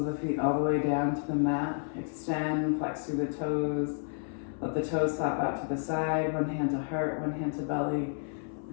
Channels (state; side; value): silent; right; 57 dB below the other